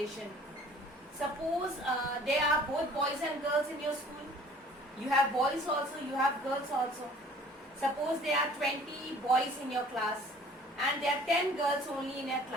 Suppose there are both boys and girls in your school. You have boys also, you have girls also. Suppose there are 20 boys in your class and there are 10 girls only in your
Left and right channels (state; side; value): normal; both; correlation 0.51